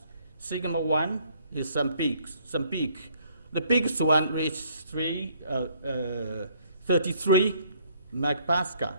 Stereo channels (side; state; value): both; inverted; correlation -0.63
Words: sigma 1 is some peak. The biggest one reached 33 megapascal.